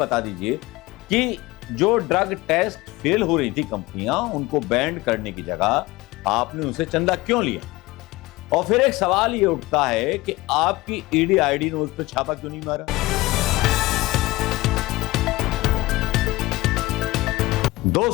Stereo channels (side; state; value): right; quieter; 19.8 dB